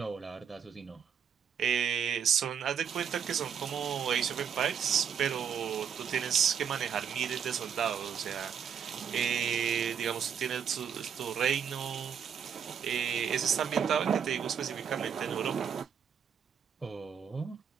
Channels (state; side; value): quieter; left; 7.7 dB